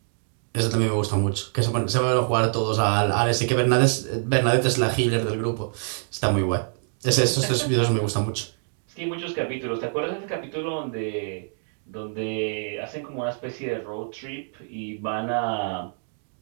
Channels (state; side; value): silent; left; 60 dB below the other